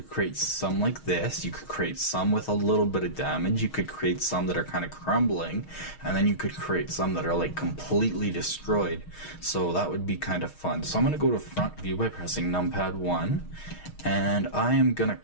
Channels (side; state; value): right; late; 6.4 ms